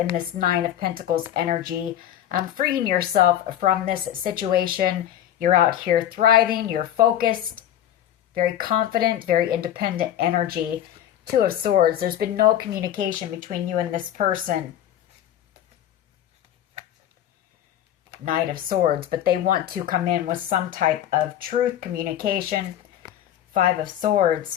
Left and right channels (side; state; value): right; quieter; 11.1 dB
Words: this Nine of Pentacles energy. Freeing yourself from this situation. You're out here thriving. You're focused. Very confident. Very independent energy. Two of Swords. There's been no communication between you and this person. Knight of Swords. But they want to come in with some type of truth, communication. Five of